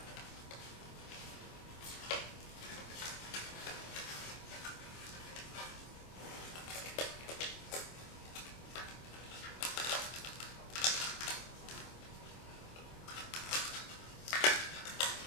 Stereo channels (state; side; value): late; right; 25 ms